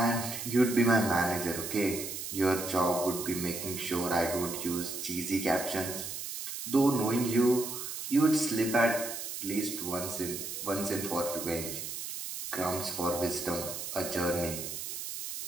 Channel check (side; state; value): right; noise; hiss, 6 dB below the sound